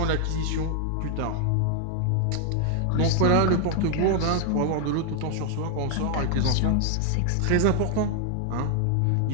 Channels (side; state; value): both; different; correlation 0.00